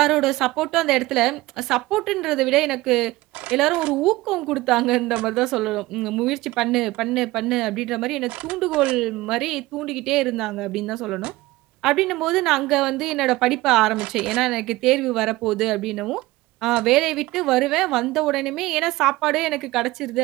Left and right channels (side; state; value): left; quieter; 19.1 dB